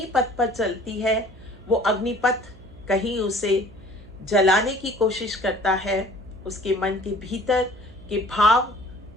पर चलती है। वो अग्निपथ कहीं उसे जलाने की कोशिश करता है, उसके मन के भीतर के भाव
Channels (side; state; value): right; noise; hum, 21 dB below the sound